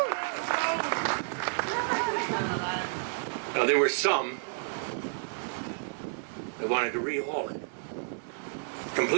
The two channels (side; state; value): left; silent; digital silence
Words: Now, there were some that wanted to rehaul it